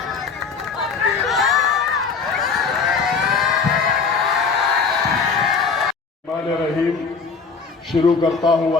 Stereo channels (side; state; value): right; quieter; 5.2 dB